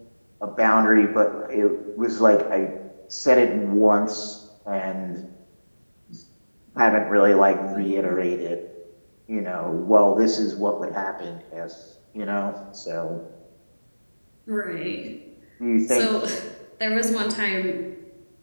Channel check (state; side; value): inverted; both; correlation -1.00